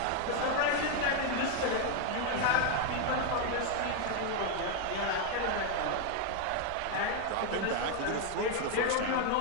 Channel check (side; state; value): both; different; correlation 0.01